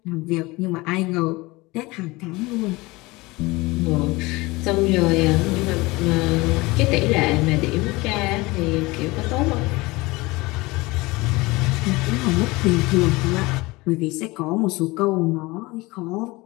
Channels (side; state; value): right; quieter; 22.3 dB